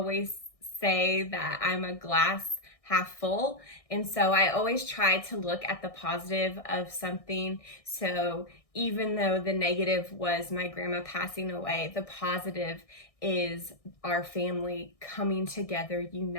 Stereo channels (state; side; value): late; right; 1.6 ms